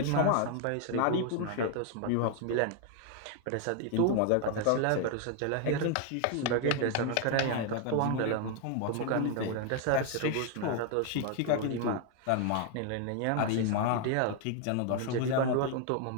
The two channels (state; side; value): different; both; correlation 0.00